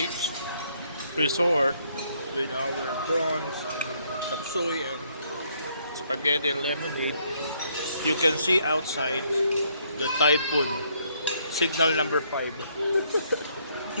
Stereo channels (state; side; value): inverted; both; correlation -0.70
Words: Resort with our prawns, tapsoy, and spaghetti and lemonade, you can see outside the typhoon signal number 5.